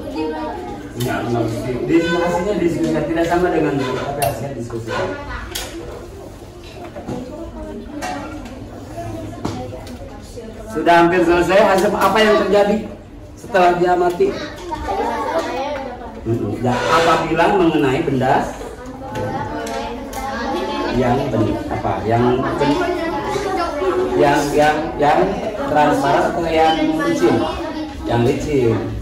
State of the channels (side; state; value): both; identical; correlation 1.00